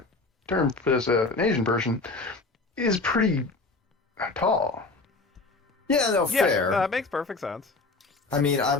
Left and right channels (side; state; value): right; quieter; 3.5 dB